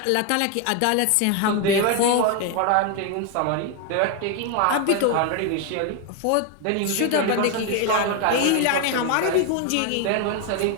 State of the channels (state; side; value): different; both; correlation 0.01